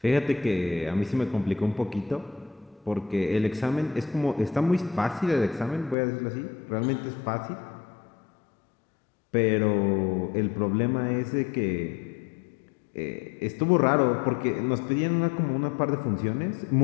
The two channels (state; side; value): drops out; right; at 6.0 s